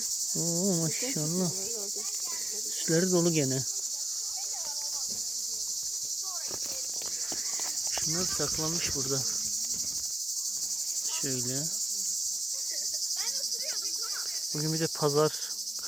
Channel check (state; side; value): normal; both; correlation 0.96